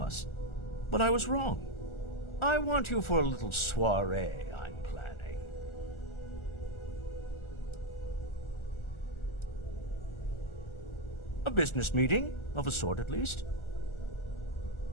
But I was wrong. I want you for a little soiree I'm planning. A business meeting, of a sort at least.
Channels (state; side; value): late; right; 1.4 ms